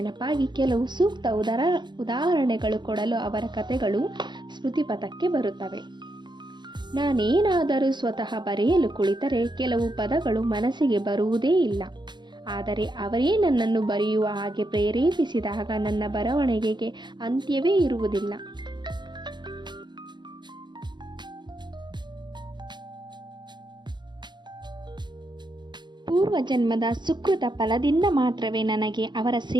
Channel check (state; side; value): late; left; 0.21 ms